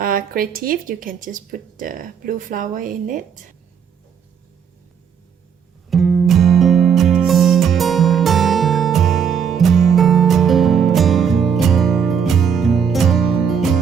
creative, you can just put the blue flower in it.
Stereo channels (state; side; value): quieter; left; 7.3 dB